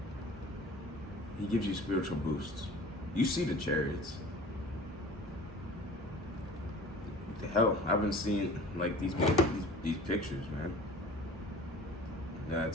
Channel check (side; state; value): both; normal; correlation 0.43